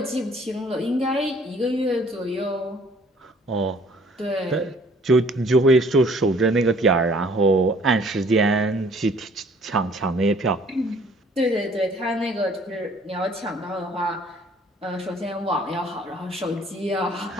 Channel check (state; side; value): normal; both; correlation 0.57